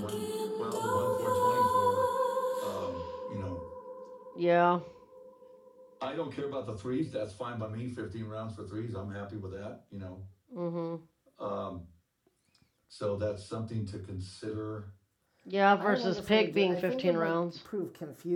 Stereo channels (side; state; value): both; identical; correlation 1.00